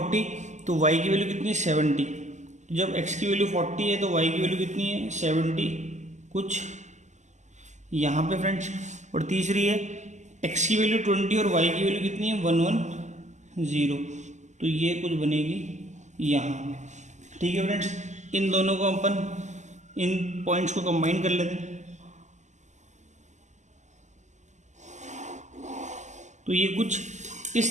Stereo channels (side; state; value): left; late; 0.34 ms